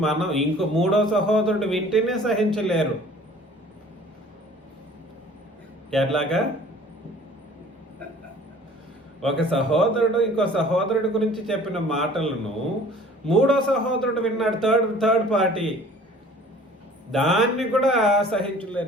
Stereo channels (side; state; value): both; normal; correlation 0.49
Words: మనం మూడో సహోదరుడు వింటేనే సహించలేరు. ఎట్లాగా? ఒక సహోదరుడు ఇంకో సహోదరుడి గురించి చెప్పిన మాటలను మూడో సహోదరుడు విన్నాడు, థర్డ్ పార్టీ, దాన్ని కూడా